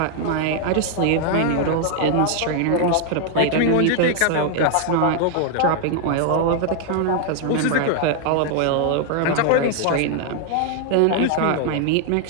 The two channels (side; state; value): both; different; correlation 0.00